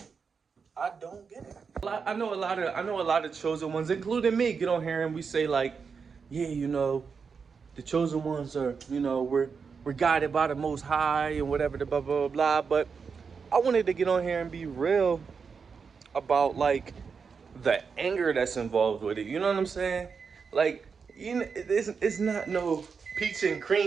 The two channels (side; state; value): left; quieter; 5.6 dB